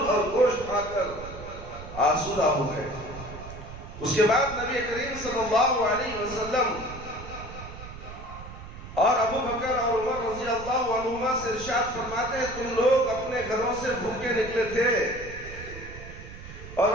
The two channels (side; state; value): right; noise; rumble, 13 dB below the sound